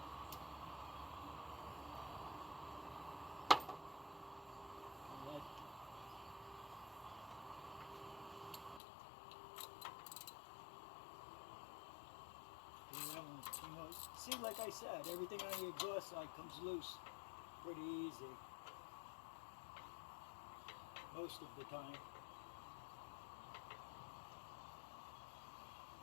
See, like I said, everything on the exhaust side comes loose pretty easy. Most of the time.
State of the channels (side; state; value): right; drops out; at 8.8 s